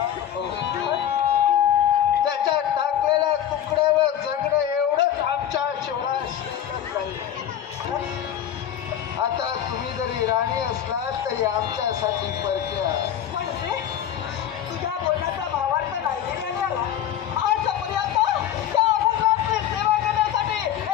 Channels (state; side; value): quieter; right; 10.4 dB